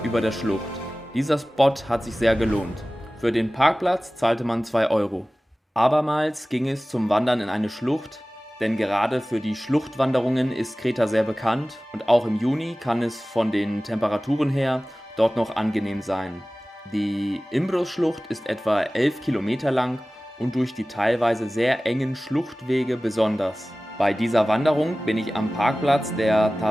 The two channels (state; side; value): normal; both; correlation 0.97